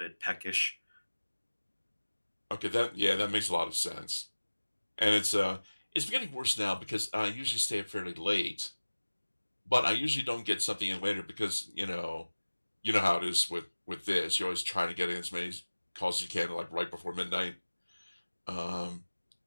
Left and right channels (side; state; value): both; inverted; correlation -1.00